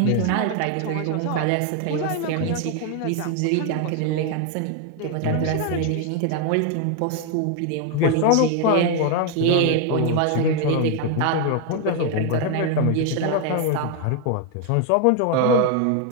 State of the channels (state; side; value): different; both; correlation 0.01